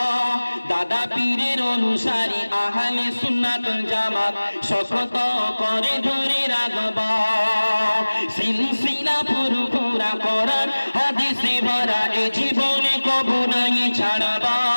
দাদা পীরের অনুসারী আহলে সুন্নাত ওয়াল জামাত শপথ করে ধরে রাখবা সিলসিলা পুরোপুরা কোরআন হাদিসে ভরা এই জীবনে কবু নাই ছাড়বা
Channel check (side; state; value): both; inverted; correlation -1.00